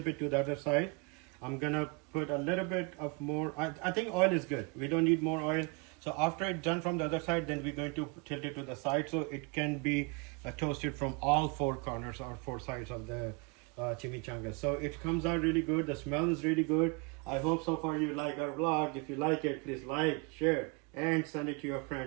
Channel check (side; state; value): left; quieter; 30.4 dB